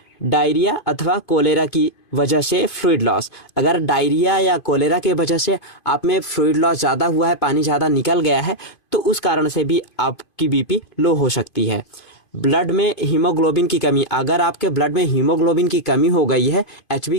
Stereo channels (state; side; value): late; right; 2.5 ms